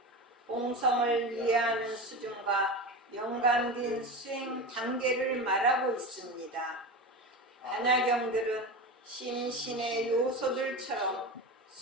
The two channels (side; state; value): both; normal; correlation 0.25